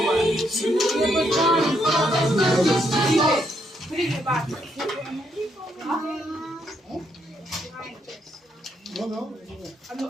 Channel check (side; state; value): both; normal; correlation 0.76